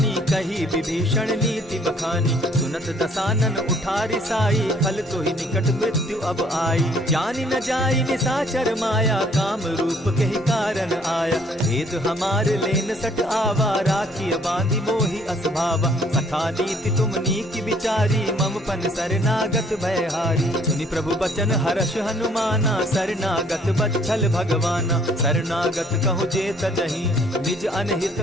कही विभीषण नीति बखानी। सुनत दसानन उठारी साई, खल तो ही निकट मृत्यु अब आई। जानि न जाई निशाचर माया, काम रूप के ही कारण आया। भेद हमार लेन सट आवा, राखी बांधी मोहि असभावा। सखा नीति तुम नीकी विचारी, मम पन शरणागत भयहारी। सुनि प्रभु बचन हर्ष हनुमाना, शरणागत बच्छल भगवाना। शरणागत कहु जे तजहि, निज अनहित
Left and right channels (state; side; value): normal; both; correlation 0.61